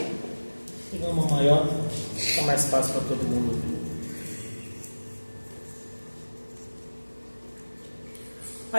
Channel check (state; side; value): inverted; both; correlation -1.00